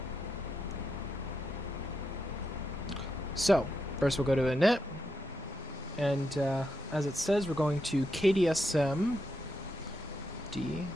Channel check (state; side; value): normal; both; correlation 0.84